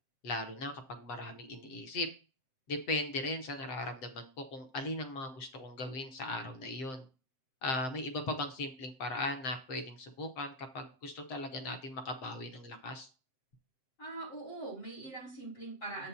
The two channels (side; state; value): right; late; 7.7 ms